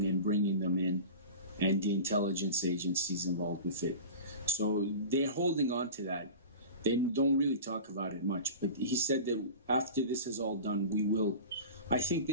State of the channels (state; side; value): inverted; both; correlation -0.33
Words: and bringing them in, and the intelligence agencies involved with it. So they're holding on to that. They don't really talk about it much, but he said that after this is all done, I think